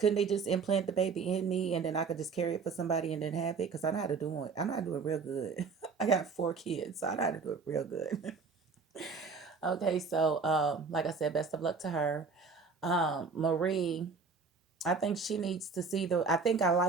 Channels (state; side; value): quieter; left; 4.9 dB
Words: they just implant the baby in me, and then I could just carry it for somebody and then have it? Because I know how to do it. I know how to do it real good. I got 4 kids, so I know how to do it real good. Okay, so like I said, best of luck to her. Marie, I think she needs to see the. I think I